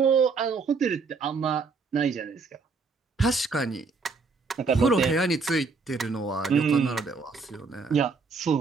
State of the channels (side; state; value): left; quieter; 4.5 dB